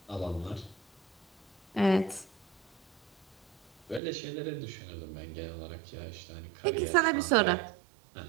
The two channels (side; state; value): left; drops out; at 4.0 s